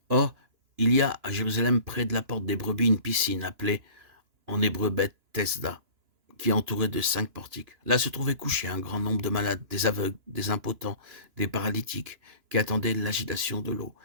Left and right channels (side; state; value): left; late; 2.9 ms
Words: Or, il y a à Jérusalem, près de la porte des brebis, une piscine appelée en hébreu Beth-Tesda, qui est entourée de 5 portiques. Là se trouvait couché un grand nombre de malades, des aveugles, des impotents, des paralytiques, qui attendaient l'agitation de l'eau,